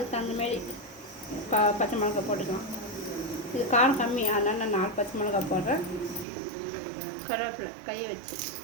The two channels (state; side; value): drops out; left; at 6.2 s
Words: தகுந்தமாரி பச்சை மிளகா போட்டுக்கலாம். இது காரம் கம்மி, அதனால் நான் 4 பச்சை மிளகா போடுறேன். கருவேப்பிலை கை வச்சு